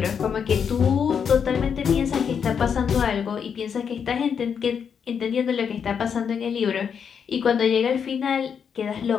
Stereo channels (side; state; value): right; quieter; 7.1 dB